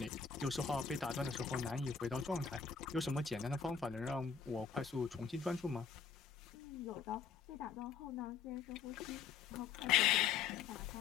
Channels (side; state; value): right; quieter; 6.4 dB